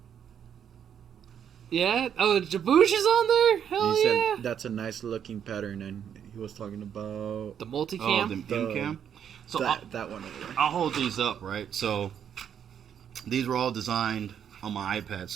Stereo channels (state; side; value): quieter; left; 8.6 dB